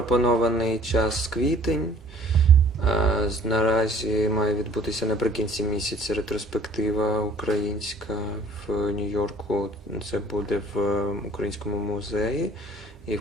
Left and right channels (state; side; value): normal; both; correlation 0.54